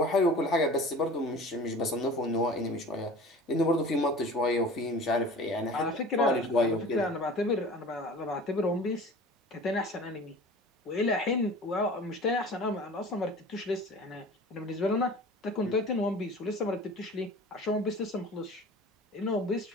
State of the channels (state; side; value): normal; both; correlation 0.41